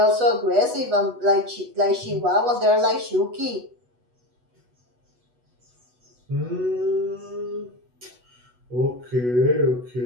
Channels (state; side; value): late; left; 8.1 ms